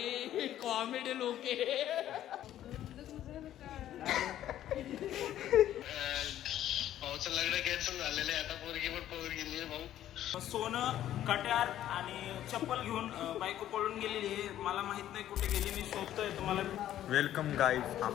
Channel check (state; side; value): quieter; right; 12.1 dB